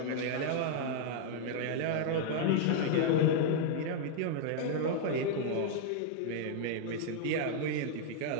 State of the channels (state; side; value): different; both; correlation -0.01